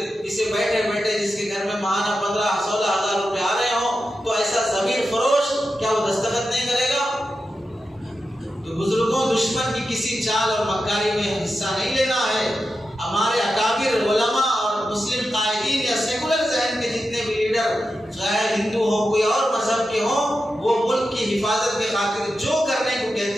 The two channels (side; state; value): both; normal; correlation 0.90